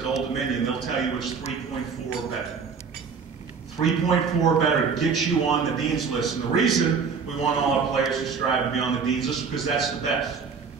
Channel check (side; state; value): left; quieter; 5.6 dB